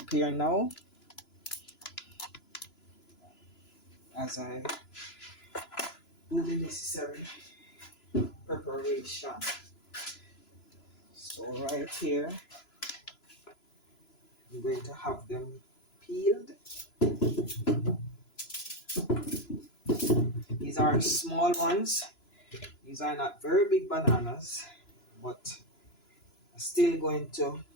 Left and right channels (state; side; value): late; right; 3.0 ms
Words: now as I do the necessary preparation. So right here, I'm going to have them peeled. These are small ones. These are not very big bananas, but I'm still going to